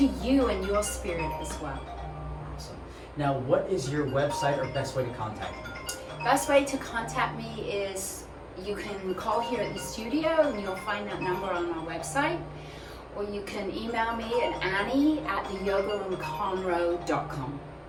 you and your spirit as well. Awesome. Now, what is your website or best way to contact you? Best way to contact me is you can call here at the studio and you'll find that number on our website, or you can email me at annie@theyogaroomconroe.com.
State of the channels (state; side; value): identical; both; correlation 1.00